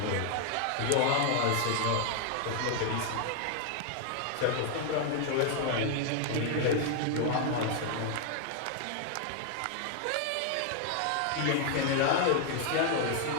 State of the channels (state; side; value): different; both; correlation 0.00